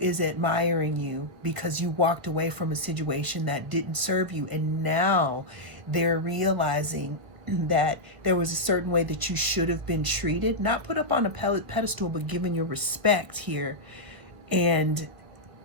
admiring you because you walked away from a situation that didn't serve you, and now they're realizing that there was a certain way that you should have been treated, not put up on a pedestal, but given your respect here. And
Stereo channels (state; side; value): late; left; 1.7 ms